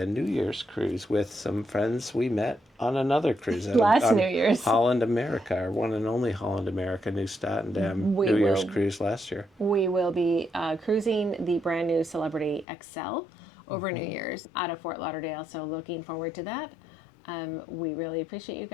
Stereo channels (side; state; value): right; drops out; at 12.7 s